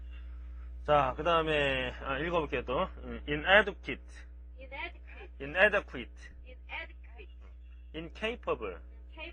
자, 그 다음에 읽어볼게요 또. inadequate, incapable.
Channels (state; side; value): identical; both; correlation 1.00